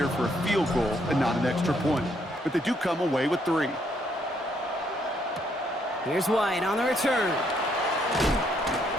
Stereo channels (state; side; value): normal; both; correlation 0.71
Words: for a field goal and not an extra point. But they do come away with 3. Here's White on the return.